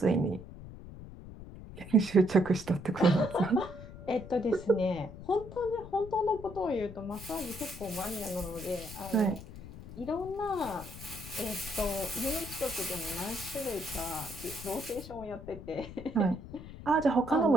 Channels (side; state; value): left; noise; rumble, 14 dB below the sound